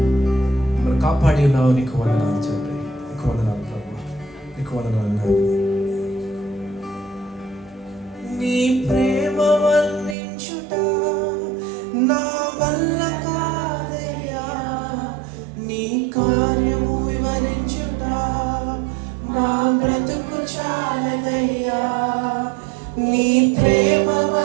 మమ్మల్ని కాపాడి ఉన్నావు. నీకు వందనాలు తండ్రి, నీకు వందనాలు ప్రభా, నీకు వందనాలు నాయన. నీ ప్రేమ వర్ణించుట నా వల్ల కాదయ్యా. నీ కార్యము వివరించుట మా బ్రతుకు చాలదయ్యా. నీ ప్రేమ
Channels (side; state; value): left; drops out; at 10.2 s